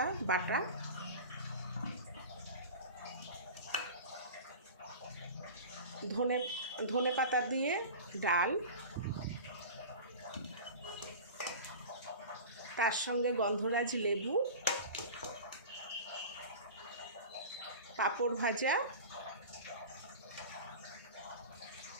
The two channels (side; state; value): both; inverted; correlation -0.33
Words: বাটা, ধনে পাতা দিয়ে ডাল, তার সঙ্গে গন্ধরাজ লেবু, পাঁপড় ভাজা